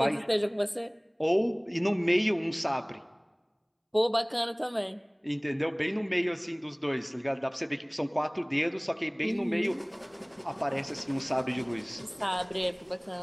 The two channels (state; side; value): identical; both; correlation 1.00